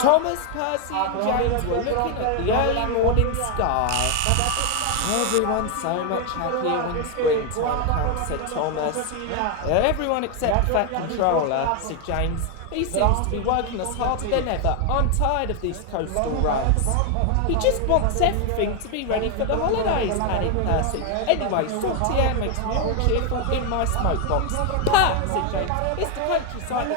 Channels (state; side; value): different; both; correlation 0.01